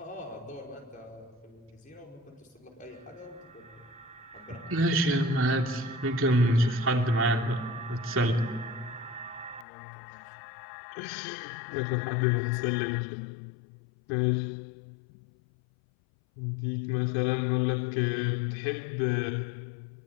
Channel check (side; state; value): right; drops out; at 9.7 s